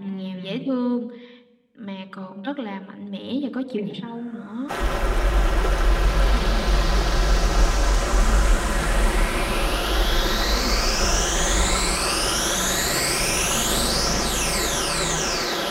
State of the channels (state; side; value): identical; both; correlation 1.00